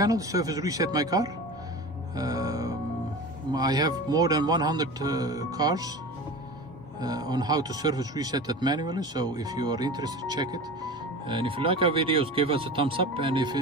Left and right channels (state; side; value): normal; both; correlation 0.32